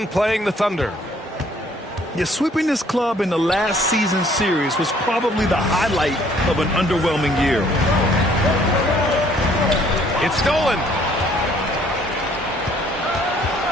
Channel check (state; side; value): normal; both; correlation 0.61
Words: playing the Thunder. Yeah, sweeping this club in the last season series was probably the highlight of an underwhelming year. It's stolen.